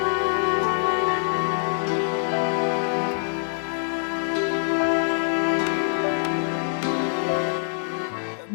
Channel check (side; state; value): right; silent; digital silence